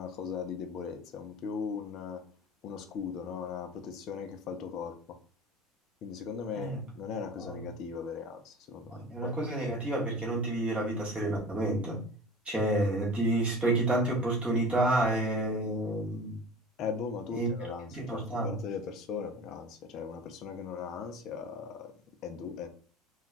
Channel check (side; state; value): both; normal; correlation 0.38